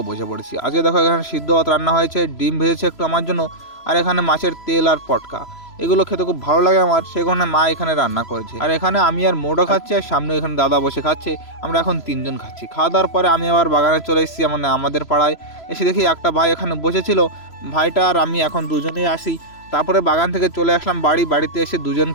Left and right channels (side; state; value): right; late; 3.0 ms